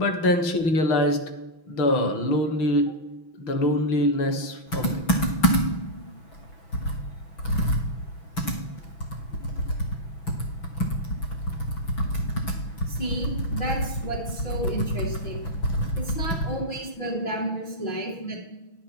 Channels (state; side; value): late; right; 6.1 ms